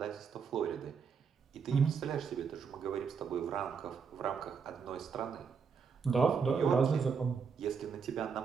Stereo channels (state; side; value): quieter; left; 6.0 dB